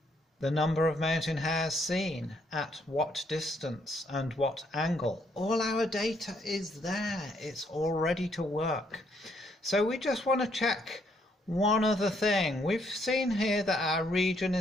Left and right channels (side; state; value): both; normal; correlation 0.71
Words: the number of mountain hares seen, at what distance and what angle. All our data is there. It's all ready to work. So we just want to check one other thing. We've seen here that our region